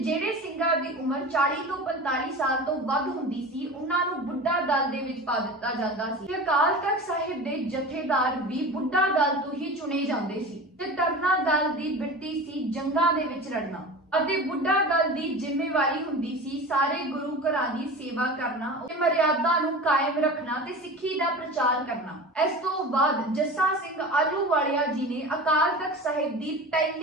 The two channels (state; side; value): normal; both; correlation 0.33